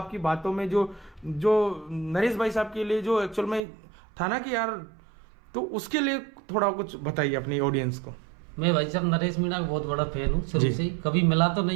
बातों में, जो नरेश भाई साहब के लिए जो एक्चुअल में था ना कि यार, तो उसके लिए थोड़ा कुछ बताइए अपनी ऑडियंस को। मैं भाई साहब नरेश मीणा का बहुत बड़ा फैन हूँ शुरू से ही। कभी मिला तो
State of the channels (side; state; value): left; drops out; at 3.6 s